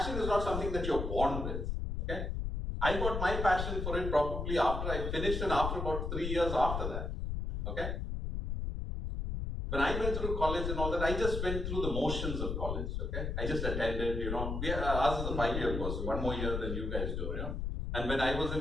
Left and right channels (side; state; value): left; noise; rumble, 3 dB below the sound